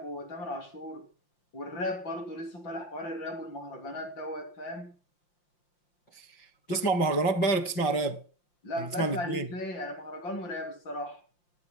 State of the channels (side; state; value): right; late; 5.7 ms